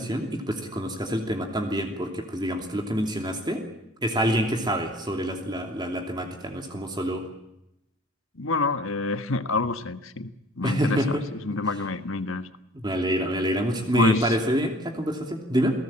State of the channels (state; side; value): normal; both; correlation 0.52